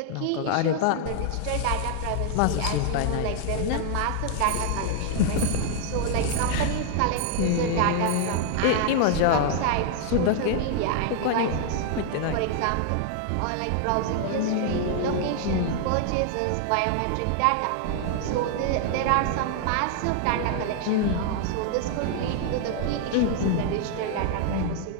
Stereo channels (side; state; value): both; different; correlation 0.00